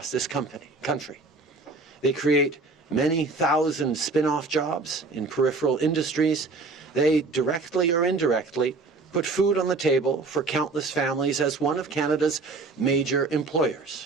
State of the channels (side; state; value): left; quieter; 3.8 dB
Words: this country. They create many thousand spin-off jobs in peripheral industries. They directly or indirectly put food on the table for countless families as one of Canada's major